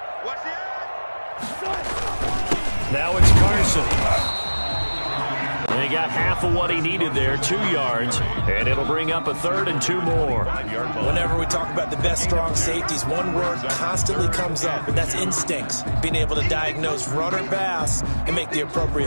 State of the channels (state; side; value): inverted; both; correlation -1.00